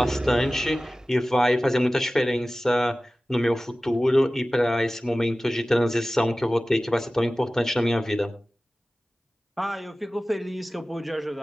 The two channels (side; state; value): both; normal; correlation 0.97